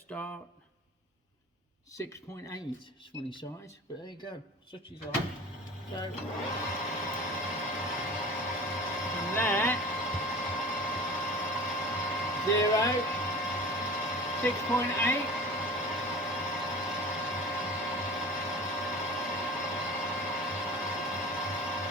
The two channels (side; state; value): both; normal; correlation 0.38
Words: 6.8. It's funny size, but there you go. Such is life. So from there, 0, 6.8.